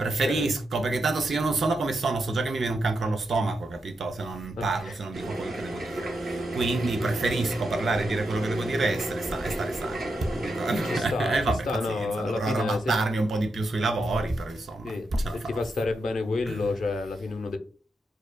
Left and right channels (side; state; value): both; normal; correlation 0.85